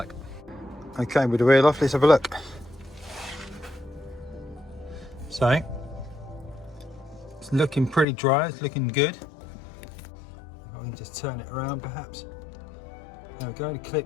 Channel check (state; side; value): drops out; right; at 8.1 s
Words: Okay, with the wheel off, let's have a look. So it's looking pretty dry, it's looking good. If I can just turn it around perhaps. There we go, the